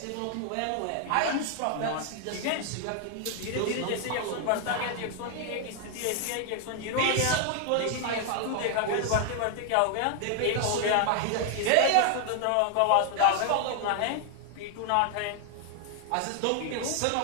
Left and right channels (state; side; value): different; both; correlation 0.00